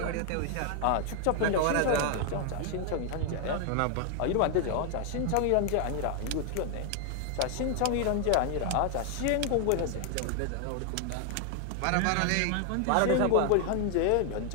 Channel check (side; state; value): both; different; correlation 0.00